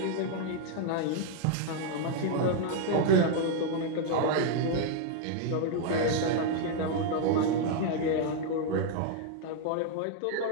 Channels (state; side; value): different; both; correlation 0.00